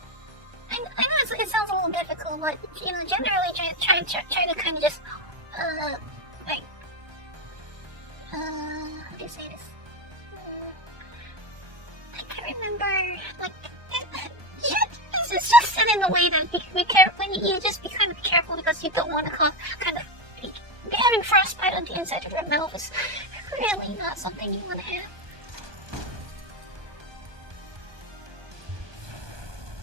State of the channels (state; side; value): late; left; 1.2 ms